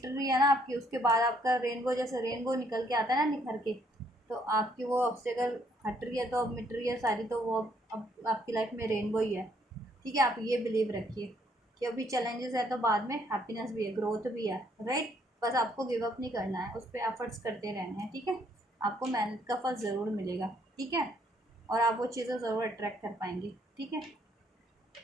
रही है ना आपकी, उसके बाद आपका रेनबो, जैसे रेनबो निकल के आता है ना निखर के, तो आपकी वो ऑब्स्टेकल हट रही है, तो अब मिट रही है सारी, तो वो अब आपकी लाइफ में रेनबो ही है, ठीक है। आप ये बिलीव रखिए कि अभी चैलेंजेस है तो बाद में हैप्पीनेस भी है, ग्रोथ भी है, राइट। बस आपको गिव अप नहीं करना है, उस पर एफर्ट्स करते रहने हैं, ठीक है। आपको मेहनत का फल ज़रूर मिलेगा, ठीक है। और आप वो चीज़ें ज़रूर अट्रैक्ट कर पाएंगे, ठीक है,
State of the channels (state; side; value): normal; both; correlation 0.68